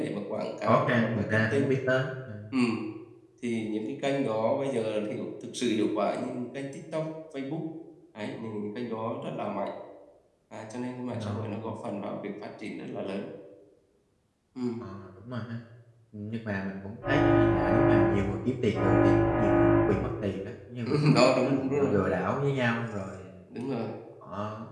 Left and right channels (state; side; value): identical; both; correlation 1.00